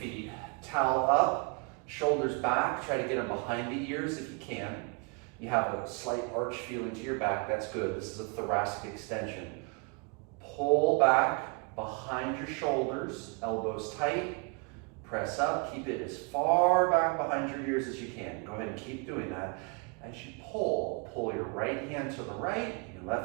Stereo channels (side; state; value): left; quieter; 32.3 dB